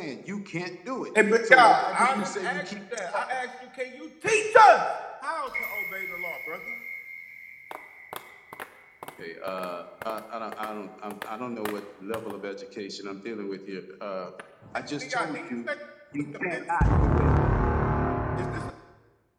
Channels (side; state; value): both; identical; correlation 1.00